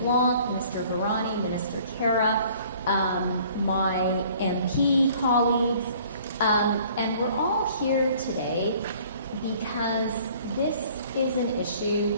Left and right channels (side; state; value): both; inverted; correlation -0.55